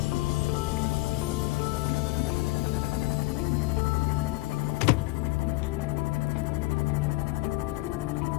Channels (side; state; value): right; quieter; 21.0 dB